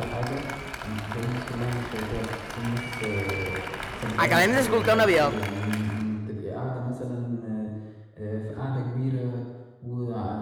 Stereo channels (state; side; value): identical; both; correlation 1.00